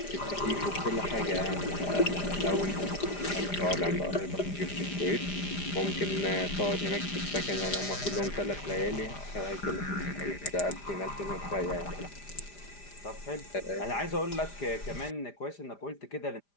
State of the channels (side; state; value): right; late; 5.0 ms